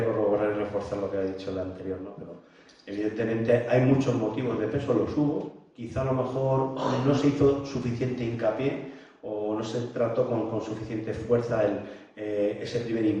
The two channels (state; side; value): identical; both; correlation 1.00